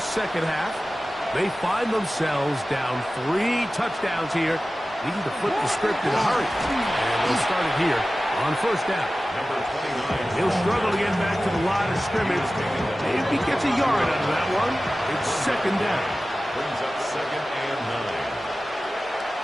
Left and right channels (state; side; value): normal; both; correlation 0.96